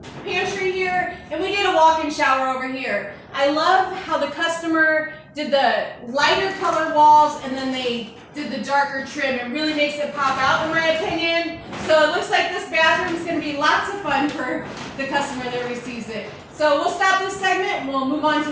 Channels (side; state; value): both; identical; correlation 1.00